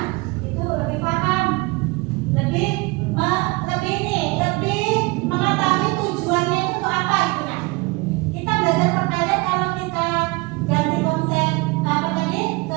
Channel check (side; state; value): left; quieter; 25.1 dB